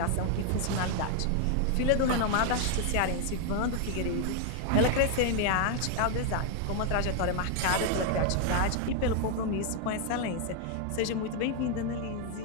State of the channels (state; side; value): different; both; correlation 0.00